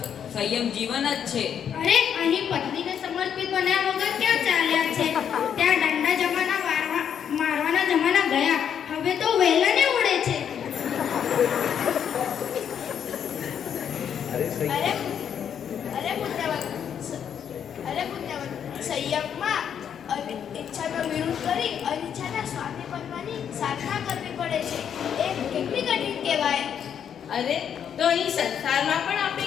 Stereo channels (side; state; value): right; quieter; 8.4 dB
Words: સંયમ જીવન જ છે. અરે અહીં પત્નીને સમર્પિત બન્યા વગર ક્યાં ચાલ્યા છે? ત્યાં દંડા જમાના મારવાના જમાના ગયા. હવે તો વેલણે ઉડે છે. અરે પુણ્યવત, સંયમમાં ઈચ્છાનો વિરોધ કરી અનિચ્છાના સ્વામી બનવાની સાધના કરવી પડે છે. એ કેટલી કઠિન કહેવાય. અરે તો અહીં સંસારમાં પણ